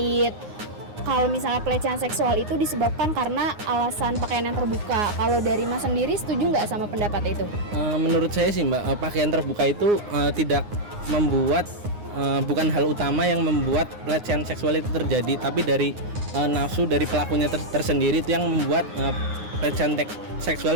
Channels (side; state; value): left; late; 9.6 ms